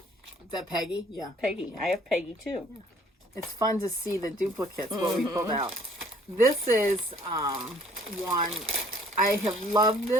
is that Peggy? Yeah. Peggy. I have Peggy too. Yeah. It's fun to see the duplicates, what we pulled out. This is one, I have loved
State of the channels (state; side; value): normal; both; correlation 0.58